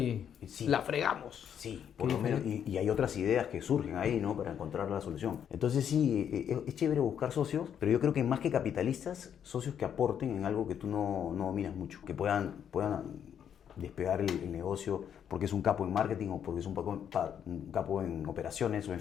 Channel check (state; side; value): quieter; right; 8.7 dB